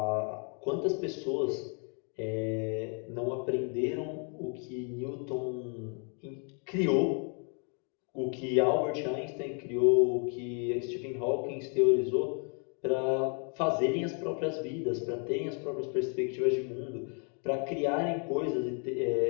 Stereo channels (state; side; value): quieter; right; 39.9 dB